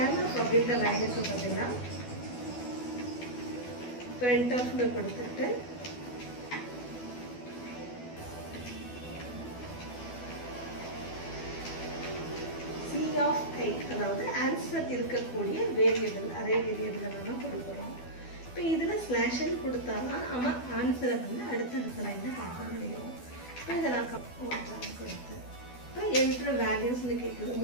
அப்படின்ற லைனுக்கு பதிலாக printf கொடுத்துட்டு அரே, அதாவது ஆன்சர் இருக்கக்கூடிய வேரியபிள், அரே வேரியபிளை நம்ம கொடுக்குறோம். இப்போ இதில் ஸ்லாஷ்ன்னு கொடுத்தா தான் நம்ம ஆன்சரை வந்து அடுத்தடுத்த லைனில் பார்க்க முடியும். இப்போ இதை நான் கொடுத்து இப்போ என்ட்ரு வேல்யூஸ்ன்னு கேட்குது.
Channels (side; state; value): right; late; 12 ms